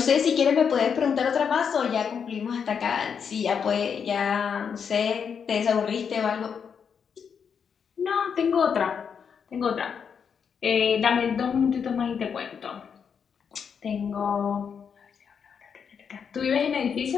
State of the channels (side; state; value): right; quieter; 6.9 dB